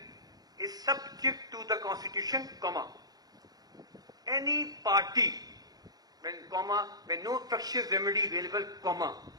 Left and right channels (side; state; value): left; late; 0.19 ms